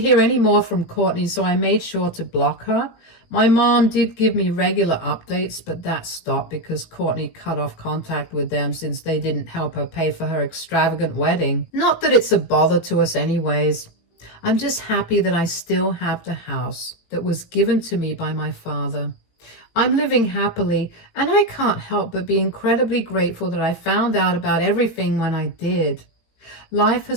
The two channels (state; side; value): late; right; 18 ms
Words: any more from Courtney, so I made sure to block her. My mom did give me regular updates, but that stopped because Courtney cut off contact with them since they didn't help her pay for her extravagant wedding. Not that it's a bother to us anyways. I'm just happy that I still have the house that was given to me by my father. I'm living happily, and I can't help but be incredibly grateful that I found out about everything when I did. Life